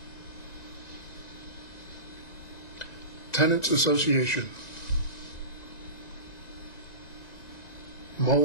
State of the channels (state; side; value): late; right; 1.9 ms